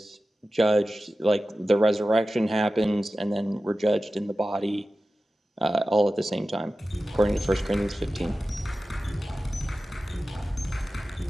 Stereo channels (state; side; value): normal; both; correlation 0.95